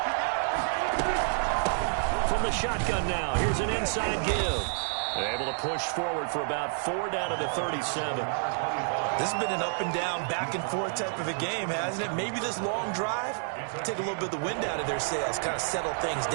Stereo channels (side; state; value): left; silent; digital silence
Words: From the shotgun now, here's an inside give. They're able to push forward for about 4 down to the 37. This has been an up and down, back and forth type of a game, hasn't it? Maybe this long drive, take a little bit of the wind out of their sails, kind of settle things